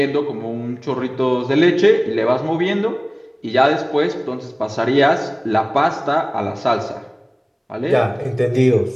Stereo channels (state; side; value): identical; both; correlation 1.00